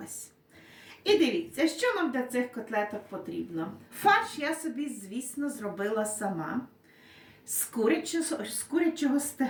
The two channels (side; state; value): both; identical; correlation 1.00